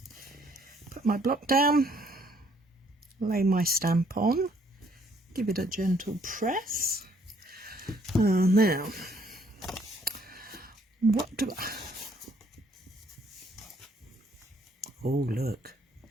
put my block down, lay my stamp on, give it a gentle press. Now, what do I... Oh, look.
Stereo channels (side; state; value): both; normal; correlation 0.65